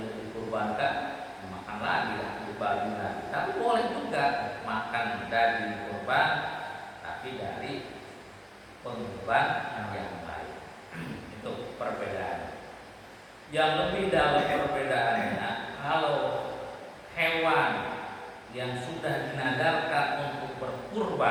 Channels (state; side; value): identical; both; correlation 1.00